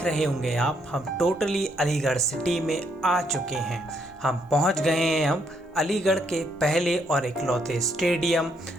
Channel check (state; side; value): normal; both; correlation 0.73